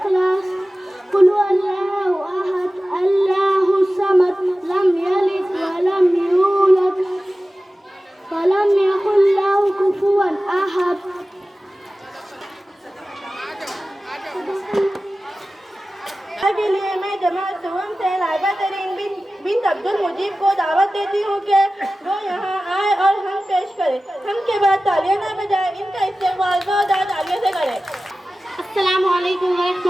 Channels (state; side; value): normal; both; correlation 0.96